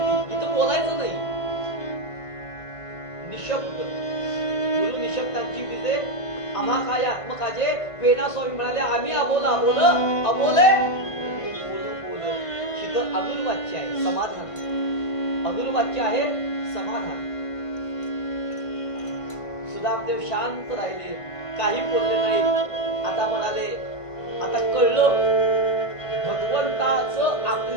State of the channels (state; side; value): late; right; 1.5 ms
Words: इथं बोलायचं नाही, निशब्द. गुरु निशब्दांची विजे आम्हा काय आत्मकाजे. वेणा स्वामी म्हणाले आम्ही अबोल अबोल अबोले बोल. इथं अदुल वाच्य आहे समाधान, अदुल वाच्य आहे समाधान. सुदामदेव शांत राहिले, काही बोलले नाही. आता म्हणाले आता कळलं, भगवंताचं